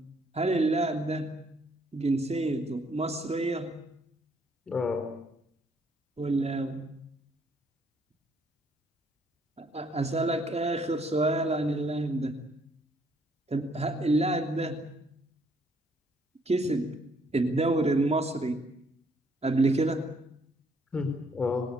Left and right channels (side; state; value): both; normal; correlation 0.67